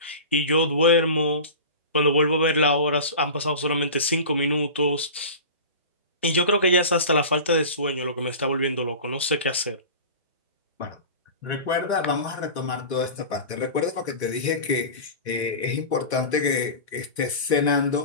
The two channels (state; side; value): inverted; both; correlation -0.33